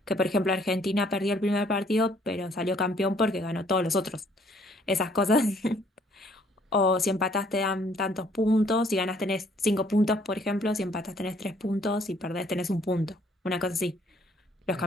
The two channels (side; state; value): both; normal; correlation 0.63